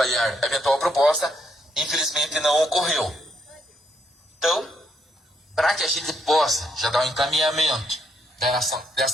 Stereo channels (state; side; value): normal; both; correlation 0.74